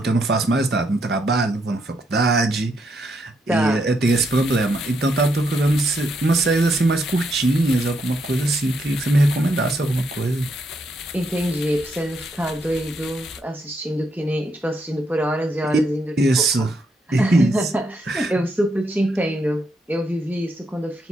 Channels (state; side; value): normal; both; correlation 0.78